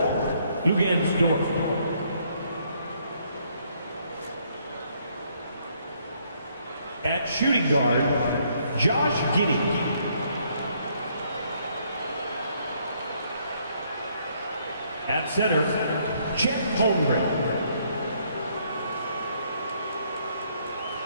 Lugansdorf. At shooting guard, Josh Giddey. At center, Chet Holmgren.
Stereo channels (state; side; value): inverted; both; correlation -0.69